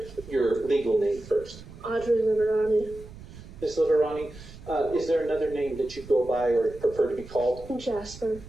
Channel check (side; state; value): right; noise; rumble, 17 dB below the sound